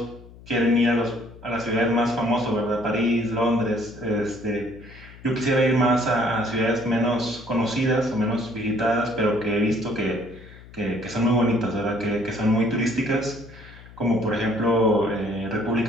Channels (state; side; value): noise; left; hum, 20 dB below the sound